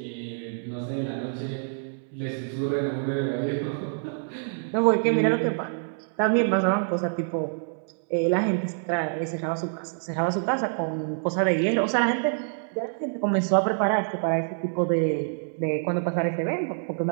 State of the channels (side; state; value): left; silent; 61 dB below the other